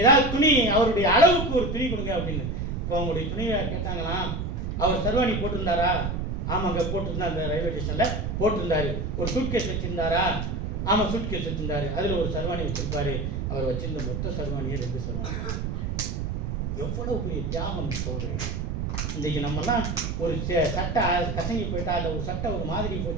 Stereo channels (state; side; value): noise; right; rumble, 2 dB below the sound